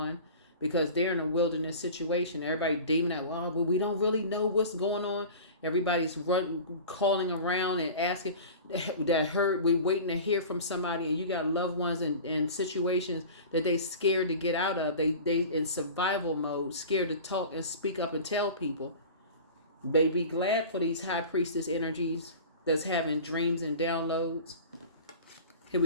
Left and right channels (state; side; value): inverted; both; correlation -0.37